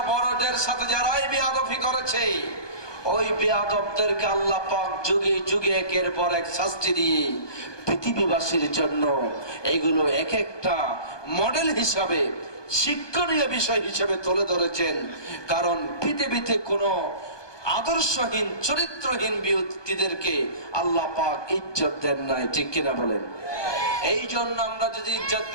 বড়দের সাথে যারাই বেয়াদবি করেছে, ওই বেয়াদবদেরকে আল্লাহ পাক যুগে যুগে একের পর এক শাস্তি দিয়ে পৃথিবীবাসীর জন্য এগুলো এক একটা মডেল হিসাবে, শিক্ষণীয় বিষয় হিসেবে তুলে ধরেছেন। কারণ পৃথিবীতে কোনো আদর্শহীন, চরিত্রহীন ব্যক্তিদেরকে আল্লাহ পাক ইজ্জত দেন নাই। ঠিক কিনা বলেন? এই জন্য আমরা যদি ইজ্জত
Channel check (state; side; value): late; right; 1.2 ms